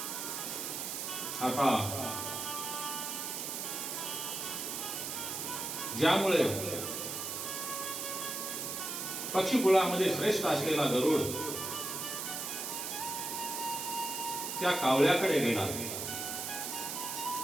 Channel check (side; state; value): right; noise; hiss, 4 dB below the sound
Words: आता ज्यामुळे पक्षीकुळामध्ये श्रेष्ठ असलेला गरुड त्या कावळ्याकडे गेला,